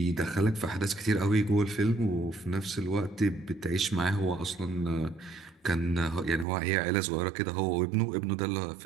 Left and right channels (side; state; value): left; drops out; at 6.5 s